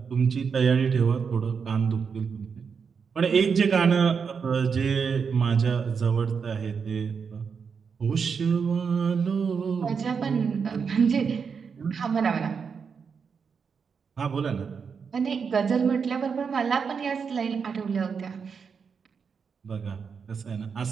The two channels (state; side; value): quieter; left; 6.0 dB